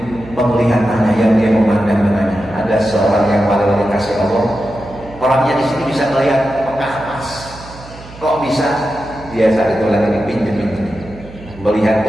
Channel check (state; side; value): noise; right; hum, 18 dB below the sound